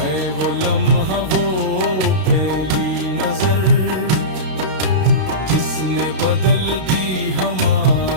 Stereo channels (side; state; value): left; late; 32 ms